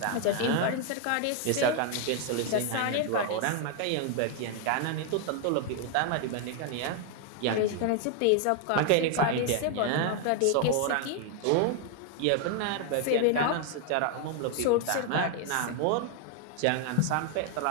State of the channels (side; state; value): both; different; correlation 0.00